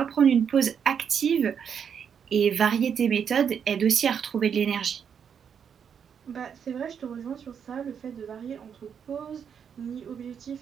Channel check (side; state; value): left; quieter; 7.5 dB